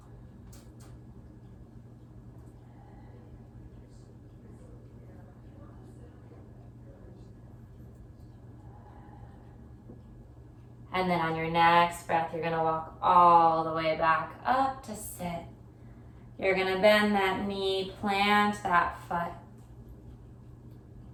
And then on your next breath, you're gonna walk all the way back up to sit. You're gonna bend that knee, plant that foot.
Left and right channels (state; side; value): identical; both; correlation 1.00